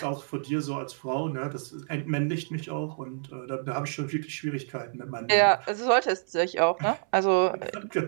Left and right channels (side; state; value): left; silent; 59 dB below the other